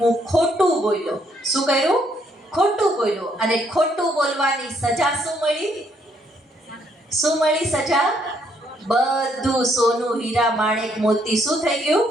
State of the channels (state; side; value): normal; both; correlation 0.71